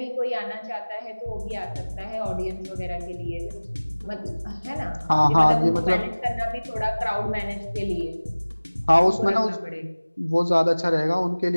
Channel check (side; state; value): both; inverted; correlation -1.00